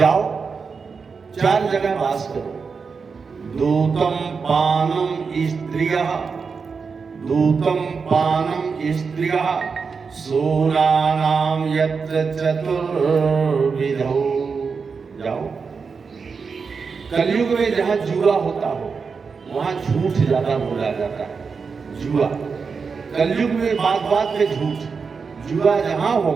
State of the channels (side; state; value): left; quieter; 5.3 dB